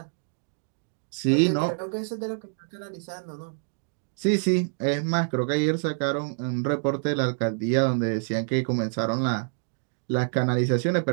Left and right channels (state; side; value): silent; left; digital silence